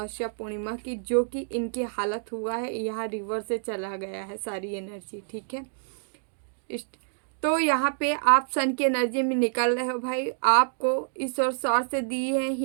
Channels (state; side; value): silent; left; digital silence